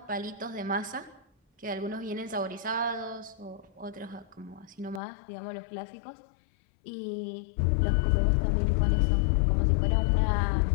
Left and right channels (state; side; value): drops out; right; at 5.0 s